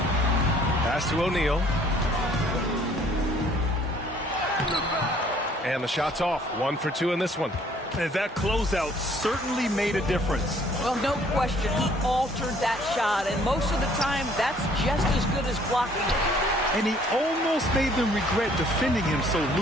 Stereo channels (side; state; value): both; normal; correlation 0.59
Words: to O'Neal. And the shot's off. 1 for 2 in this one. And that closeout certainly made a difference. Well, no question. He altered that shot, and most of the time, that's just as good as blocking it. And he almost made them regret defending him so